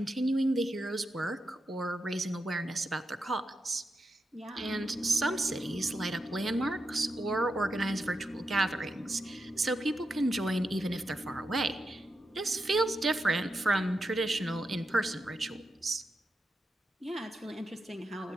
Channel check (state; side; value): normal; both; correlation 0.87